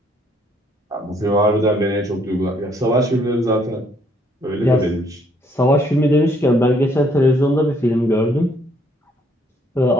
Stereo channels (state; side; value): normal; both; correlation 0.66